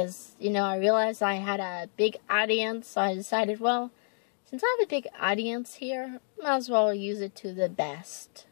I realized I had a big audience, so I decided, well, since I have a big audience here, I might as well use it to the best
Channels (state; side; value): silent; right; 58 dB below the other